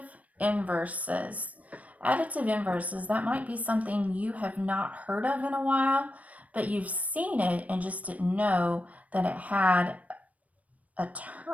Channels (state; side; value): late; left; 0.069 ms